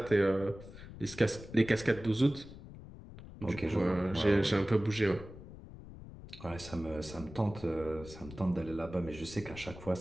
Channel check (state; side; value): noise; left; rumble, 15 dB below the sound